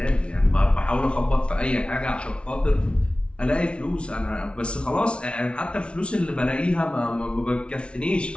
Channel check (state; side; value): late; right; 0.059 ms